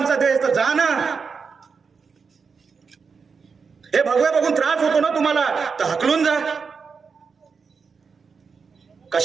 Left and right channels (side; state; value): left; quieter; 5.4 dB